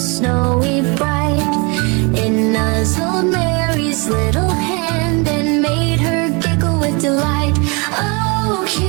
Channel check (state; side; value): quieter; left; 30.1 dB